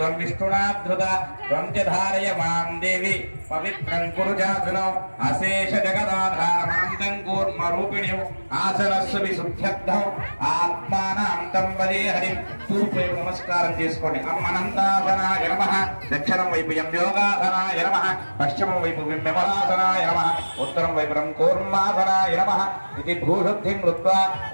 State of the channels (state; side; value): inverted; both; correlation -1.00